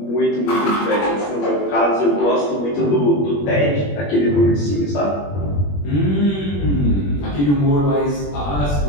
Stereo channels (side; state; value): right; late; 21 ms